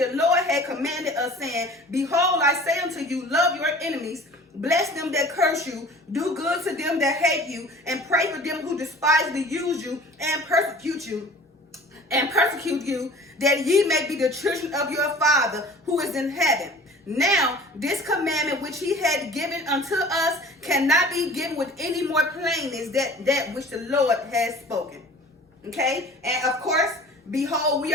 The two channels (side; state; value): both; normal; correlation 0.45